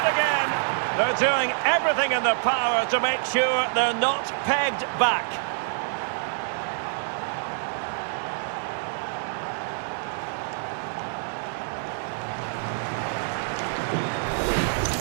again. They're doing everything in their power to make sure they're not pegged back.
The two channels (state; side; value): silent; left; digital silence